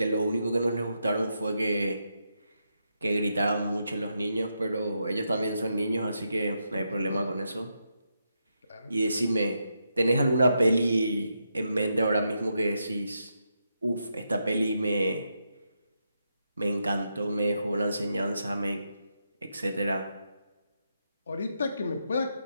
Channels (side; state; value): both; inverted; correlation -0.83